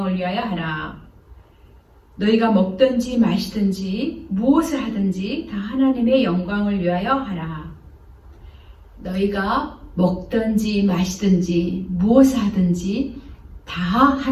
위하여 하라. 너희가 먹든지 마시든지 무엇을 하든지 다 하나님의 영광을 위하여 하라. 너희가 먹든지 마시든지 무엇을 하든지 다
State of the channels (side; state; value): both; identical; correlation 1.00